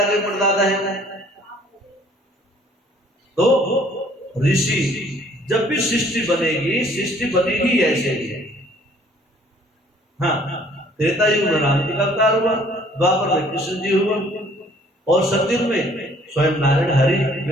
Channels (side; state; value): both; normal; correlation 0.58